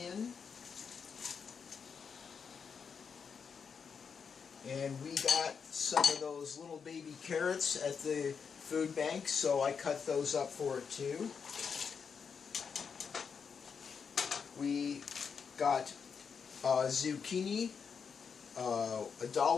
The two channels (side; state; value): right; quieter; 6.2 dB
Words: And we got some of those little baby carrots at the food bank, so I cut those up for it too. We got zucchini,